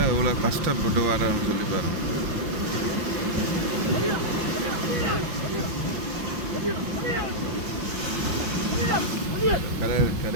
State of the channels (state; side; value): late; left; 5.8 ms